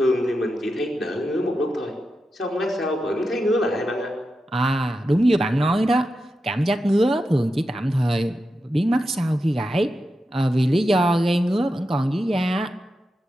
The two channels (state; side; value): normal; both; correlation 0.89